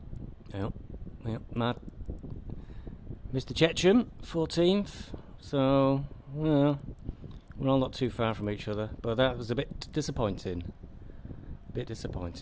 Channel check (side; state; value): both; identical; correlation 1.00